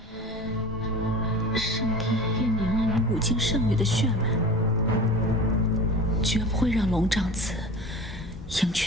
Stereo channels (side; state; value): both; normal; correlation 0.36